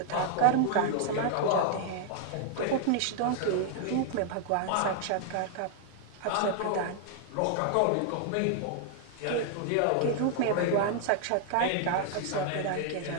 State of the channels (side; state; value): both; different; correlation 0.00